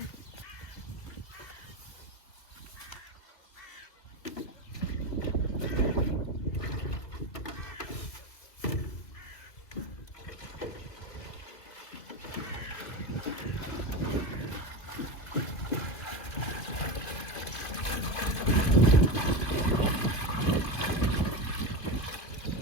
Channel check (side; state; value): right; late; 2.5 ms